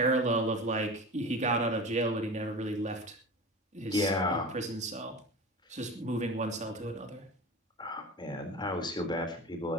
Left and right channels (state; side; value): normal; both; correlation 0.31